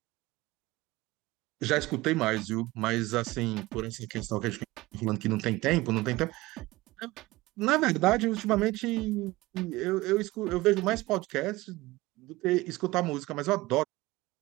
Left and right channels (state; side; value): quieter; left; 19.9 dB